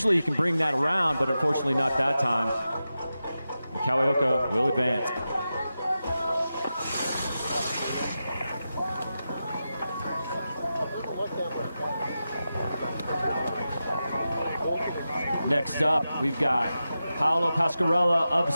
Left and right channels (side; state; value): both; inverted; correlation -0.91